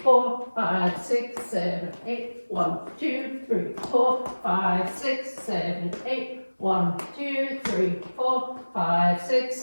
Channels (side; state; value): both; inverted; correlation -1.00